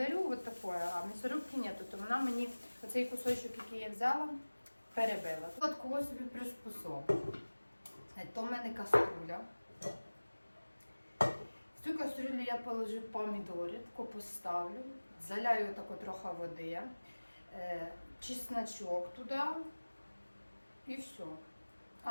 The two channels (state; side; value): inverted; both; correlation -1.00